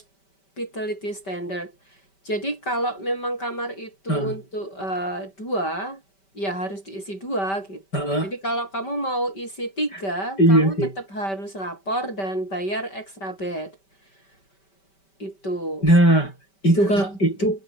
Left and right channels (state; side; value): late; right; 5.2 ms